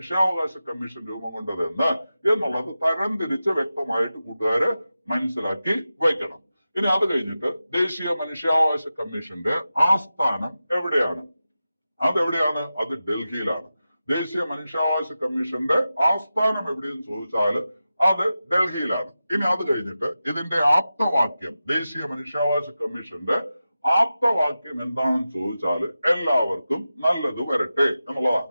കമ്മീഷൻ രൂപം കൊണ്ടതെന്ന് എന്നുള്ളത് തരംതിരിച്ച് വ്യക്തമായിട്ട് കൂട്ടുകാര് മനസ്സിലാക്കി വയ്ക്കണം. ഇനി അത് കഴിഞ്ഞിട്ട് ദേശീയ മനുഷ്യാവകാശ കമ്മീഷന്റെ ആസ്ഥാനം എവിടെയാണ്? അതെവിടെയാണ്? അത് ഡൽഹിയിലാണ്. ദേശീയ മനുഷ്യാവകാശ കമ്മീഷന്റെ ആസ്ഥാനം എവിടെയെന്ന് ചോദിച്ചാൽ അത് ഡൽഹിയിലാണ്. ഇനി അത് കഴിഞ്ഞിട്ട് ഇതിന്റെ ആപ്തവാക്യം, ദേശീയ മനുഷ്യാവകാശ കമ്മീഷന്റെ ആപ്തവാക്യം എന്താണെന്ന് ചോദിച്ചാൽ എല്ലാവർക്കും നല്ലത് വരട്ടെ എന്നുള്ളതാണ്.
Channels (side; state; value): both; inverted; correlation -0.93